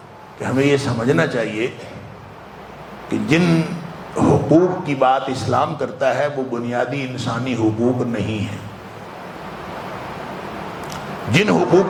کہ ہمیں یہ سمجھنا چاہیے کہ جن حقوق کی بات اسلام کرتا ہے وہ بنیادی انسانی حقوق نہیں ہے. جن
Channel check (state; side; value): identical; both; correlation 1.00